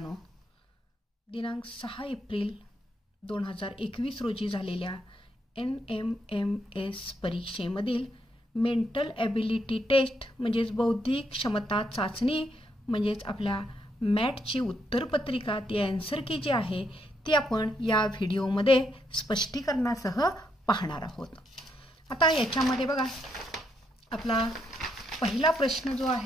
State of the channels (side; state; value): both; normal; correlation 0.77